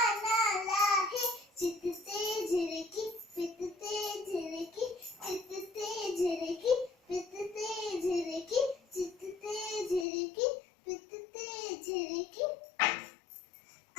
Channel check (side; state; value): right; drops out; at 10.1 s